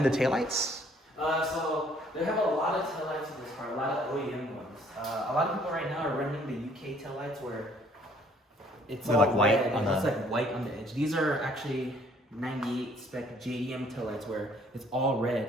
the taillights? So they have a lot of taillights in this car, a lot of OEM ones. A lot of people right now are running the UK taillights where it's They're all like white red, on and it's the- like white on the edge. These are actually 98 spec JDM taillights where it's all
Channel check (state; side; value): normal; both; correlation 0.61